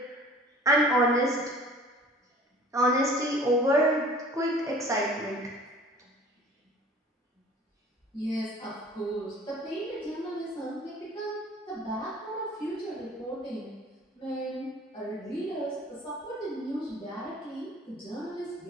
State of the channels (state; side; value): normal; both; correlation 0.48